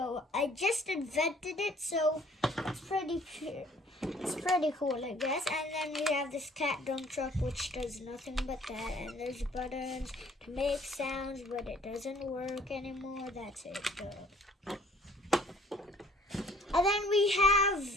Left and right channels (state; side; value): normal; both; correlation 0.56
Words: I just invented it, so it's pretty cool, I guess. And then we have this cat dump truck, which does nothing but that. And there's buttons to make sounds, but it doesn't work anymore. That's it, though. And then we